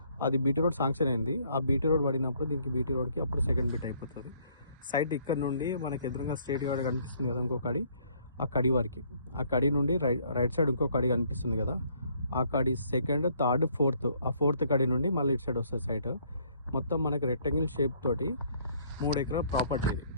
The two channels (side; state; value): both; inverted; correlation -0.64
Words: అది బీటీ రోడ్ శాంక్షన్ అయింది. ఆ బీటీ రోడ్ పడినప్పుడు దీనికి బీటీ రోడ్కి అప్పుడు సెకండ్ బిట్ అయిపోతుంది. సైట్ ఇక్కడ నుండి మనకి ఎదురుగా స్ట్రేట్ గా కనిపిస్తుంది కదా ఇంకో కడి, ఆ కడి వరకు. ఆ కడి నుండి రైట్ సైడ్ ఇంకో కడి కనిపిస్తుంది కదా, ఆ కడి సెకండ్, థర్డ్, ఫోర్త్. ఆ ఫోర్త్ కడి నుండి మళ్ళీ ఇటు సైడ్ వస్తుంది సైట్. మొత్తం మనకి రెక్టాంగిల్ షేప్ తోటి 3 ఎకరాల ప్రాపర్టీ ఇది.